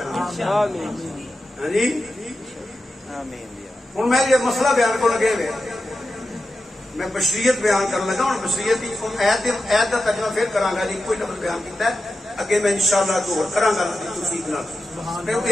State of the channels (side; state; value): both; normal; correlation 0.91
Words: آمین ہاں جی ہوں میں یہ مسئلہ بیان کو لگے ہوئے میں بشریت بیان کرنے لگا ہوں بشریت عید کا ترجمہ پھر کرا گا جی کوئی لفظ بیان کیتا ہے اگے میں انشاءاللہ دور کرا گا توفیق نال